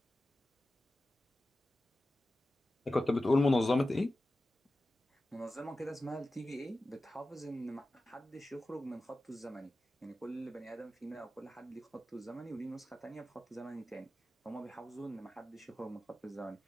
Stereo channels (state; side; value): normal; both; correlation 0.94